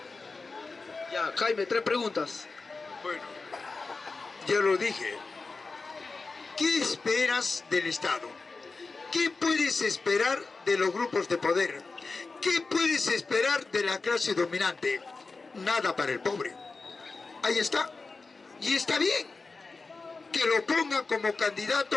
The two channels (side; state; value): right; quieter; 4.0 dB